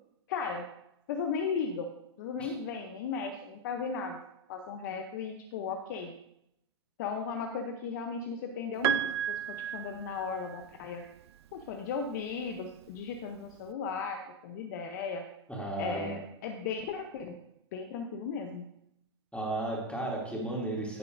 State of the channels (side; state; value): both; normal; correlation 0.08